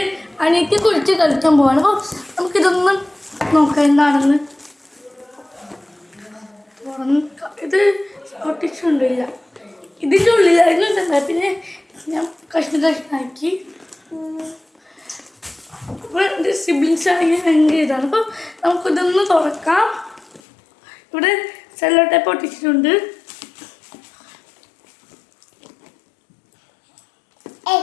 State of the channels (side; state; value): right; drops out; at 20.4 s